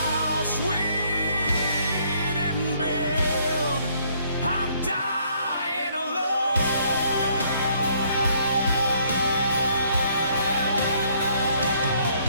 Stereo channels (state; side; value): inverted; both; correlation -0.66